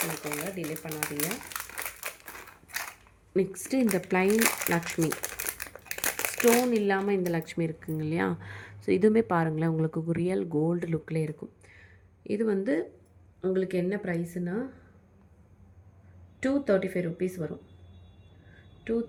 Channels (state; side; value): identical; both; correlation 1.00